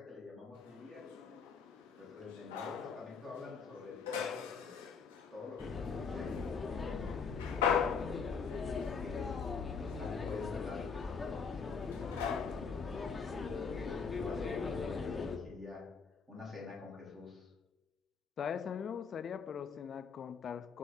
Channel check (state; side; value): quieter; right; 5.6 dB